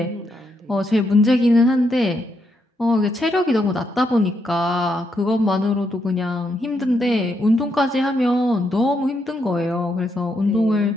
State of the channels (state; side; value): normal; both; correlation 0.79